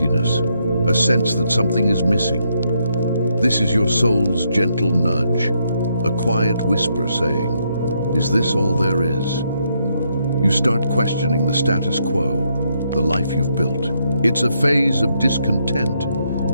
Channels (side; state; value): both; inverted; correlation -0.77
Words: a sense that something is missing. This is your soul's gentle nudge, a quiet whisper saying, "Is this all there is?" You start questioning the status quo, the life you've built. It's a phase of discontent,